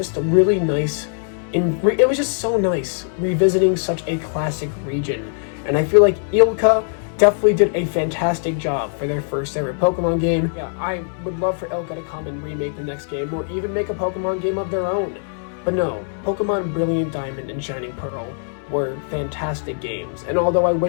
a really nice, it was just so nice revisiting such a classic region. And I feel like Ilka definitely did a fantastic job for their first ever Pokemon game. Yeah, I would love for Ilka to come and remake the next game, or even make a Pokemon game of their own. But no, Pokemon Brilliant Diamond and Shining Pearl were fantastic games, and although I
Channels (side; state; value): right; silent; 65 dB below the other